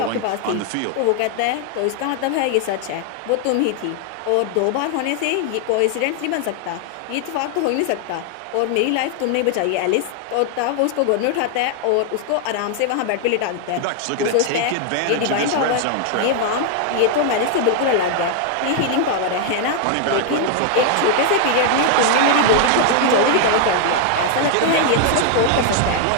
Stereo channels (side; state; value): both; different; correlation 0.00